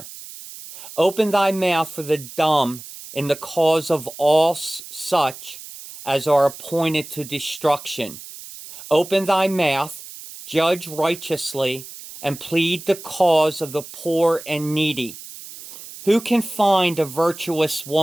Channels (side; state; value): right; noise; hiss, 14 dB below the sound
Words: Open thy mouth for the dumb in the cause of all such as are appointed to destruction. Open thy mouth, judge righteously, and plead the cause of the poor and needy. Who can find a virtuous